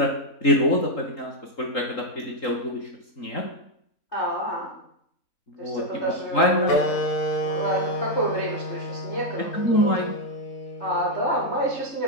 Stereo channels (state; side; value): late; right; 3.8 ms